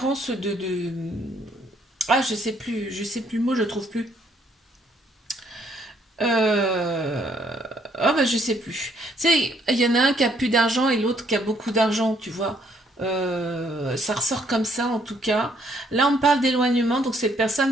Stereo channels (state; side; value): normal; both; correlation 0.68